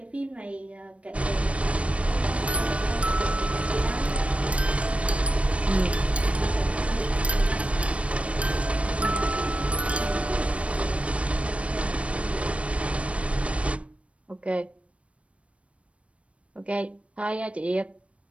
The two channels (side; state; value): left; late; 0.062 ms